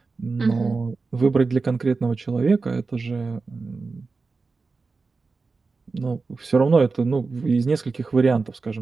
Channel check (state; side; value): quieter; left; 4.2 dB